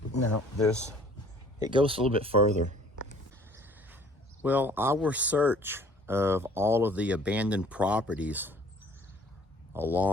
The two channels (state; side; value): normal; both; correlation 0.54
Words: No, it goes a little bit further. Well, our search of all of the abandoned properties